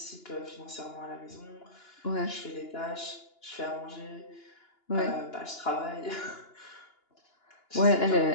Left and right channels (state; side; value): late; right; 2.9 ms